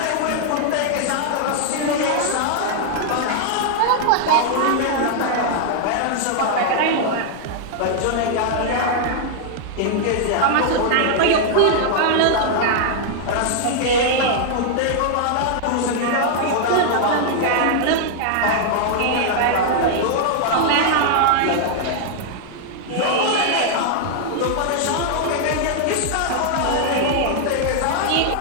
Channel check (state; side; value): different; both; correlation 0.00